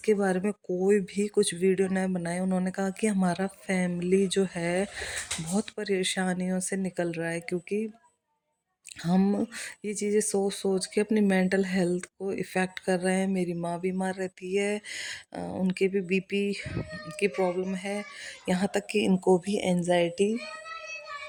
बारे में कोई भी कुछ वीडियो न बनाए। उन्होंने कहा कि हमारा फैमिली जो है बहुत परेशानियों से निकल रहा है, क्योंकि हम ये चीज़ें सोच सोच के अपनी मेंटल हेल्थ को इफ़ेक्ट कर रहे हैं। मेरी माँ बीमार रहती है, उनके भी बीपी की प्रॉब्लम है, यहाँ तक कि इनको भी एंजाइटी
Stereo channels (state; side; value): identical; both; correlation 1.00